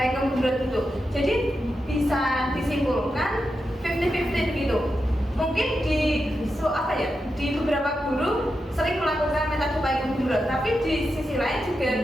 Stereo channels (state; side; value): normal; both; correlation 0.88